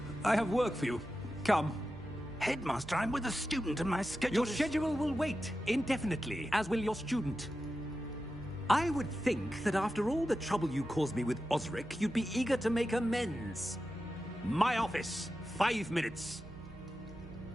I have work for you. Come. Headmaster, I'm with a student and my schedule Your schedule will wait indefinitely, as will your student. I would think that after all the trouble you caused me with Osric, you'd be eager to make amends. My office, 5 minutes.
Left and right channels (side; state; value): right; noise; hum, 18 dB below the sound